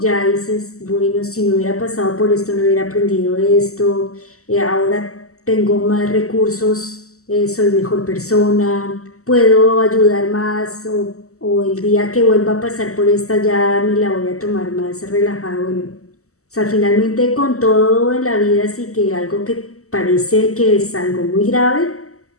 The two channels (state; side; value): late; right; 0.65 ms